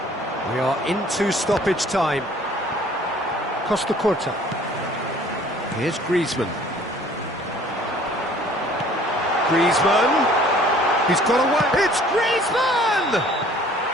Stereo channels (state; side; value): normal; both; correlation 0.54